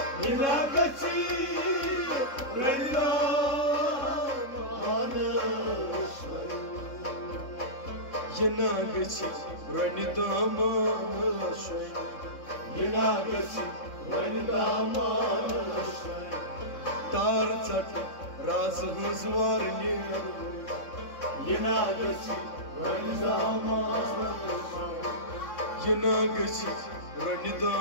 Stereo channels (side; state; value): right; late; 3.6 ms